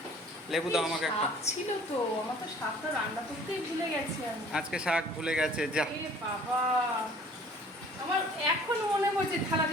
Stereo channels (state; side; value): normal; both; correlation 0.52